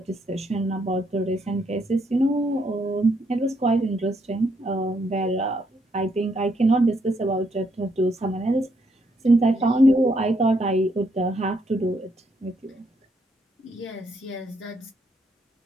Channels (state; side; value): normal; both; correlation 0.74